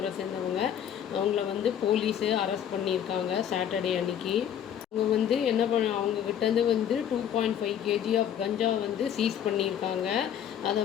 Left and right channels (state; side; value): quieter; right; 9.5 dB